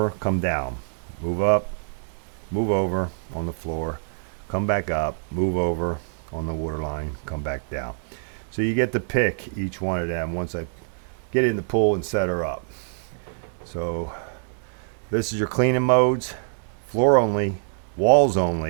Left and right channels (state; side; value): silent; left; digital silence